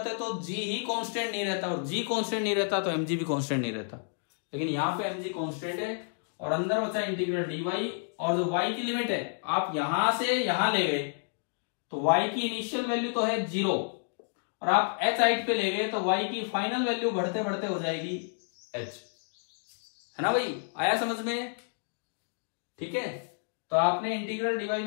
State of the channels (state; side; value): silent; right; digital silence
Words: तो g ही कांस्टेंट नहीं रहता, और g कांस्टेंट नहीं रहता तो mg भी कांस्टेंट नहीं रहता। लेकिन यहाँ पे mg कांस्टेंट है, और अंदर बचा इंटीग्रल dy, और जो y की लिमिट है आप यहां से यहां ले गए तो y की इनिशियल वैल्यू तो है 0, और आप h हाइट पे ले गए तो y की फाइनल वैल्यू बढ़ते बढ़ते हो जाएगी h, है ना भाई? आया समझ में? ठीक है, तो आपने इंटीग्रल dy